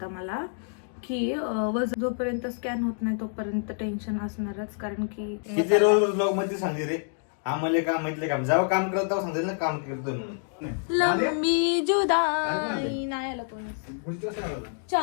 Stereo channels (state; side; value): silent; right; 60 dB below the other